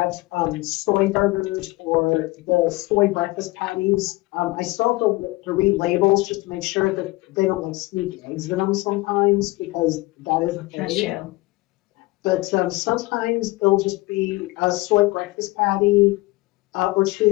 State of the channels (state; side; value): quieter; right; 21.3 dB